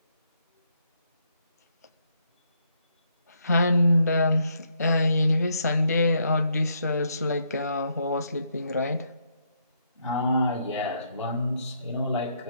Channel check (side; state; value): both; inverted; correlation -0.75